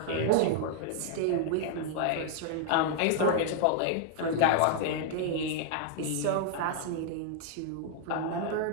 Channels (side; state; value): both; different; correlation -0.01